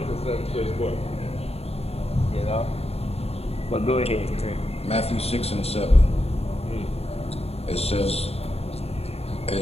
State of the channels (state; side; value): late; right; 0.29 ms